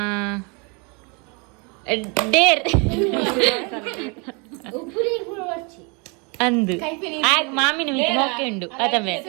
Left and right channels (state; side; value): quieter; left; 31.8 dB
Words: ಡೇರ್ ಅಂದು ಆಗ ಮಾಮಿನ ಮಿತಿ ಮೊಕ್ಕೆ ಉಂಡು ಅತಮೆ